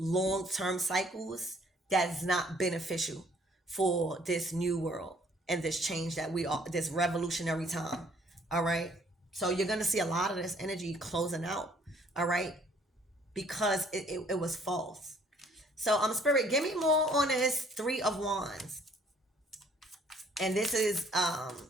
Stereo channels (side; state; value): both; normal; correlation 0.61